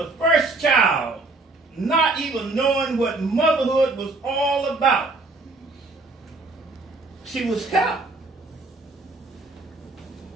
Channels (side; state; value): left; quieter; 3.3 dB